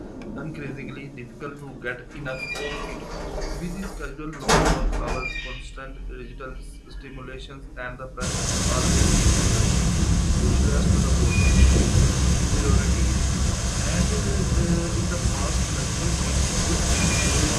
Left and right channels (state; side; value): identical; both; correlation 1.00